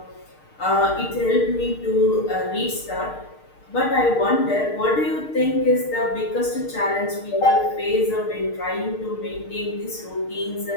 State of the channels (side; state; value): right; late; 6.5 ms